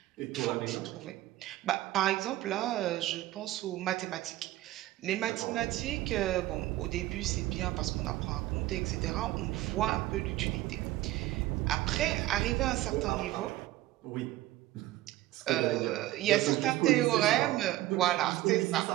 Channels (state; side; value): quieter; left; 16.1 dB